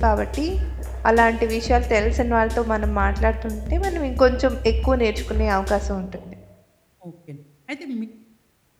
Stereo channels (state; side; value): identical; both; correlation 1.00